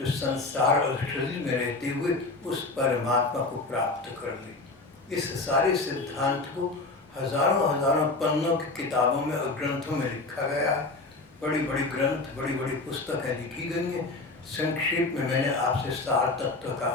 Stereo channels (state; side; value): quieter; right; 3.4 dB